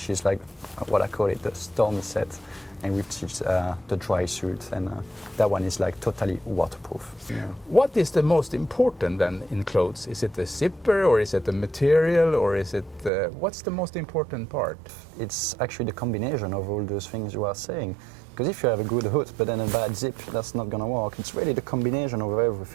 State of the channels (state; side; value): drops out; left; at 13.1 s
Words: is like what I call it, the stormy set, and which is the dry suit, and that one is like totally waterproof. Yeah. What is the most important then in clothes? Is it the zipper, or is it the material, or is it what's the most important part? It's actually the combination of all those things you are saying. Because if you have a good hood but then a bad zip, that's not gonna work. It's really the combination of